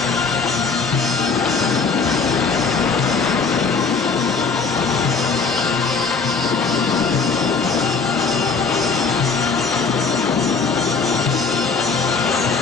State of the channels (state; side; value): quieter; right; 4.9 dB